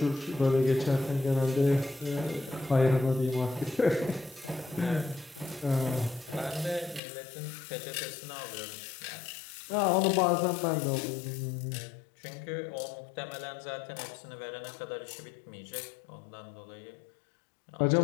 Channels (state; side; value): drops out; right; at 7.0 s